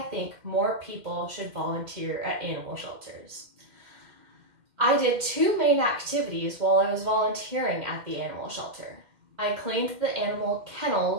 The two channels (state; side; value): late; left; 2.1 ms